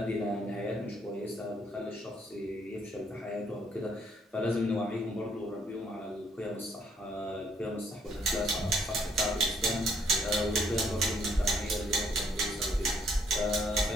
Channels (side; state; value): both; normal; correlation 0.67